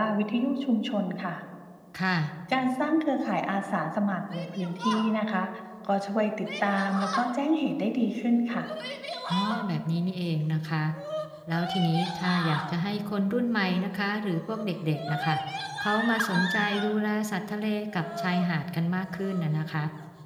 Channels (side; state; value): both; identical; correlation 1.00